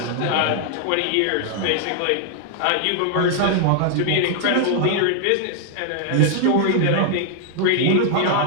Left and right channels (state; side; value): different; both; correlation 0.00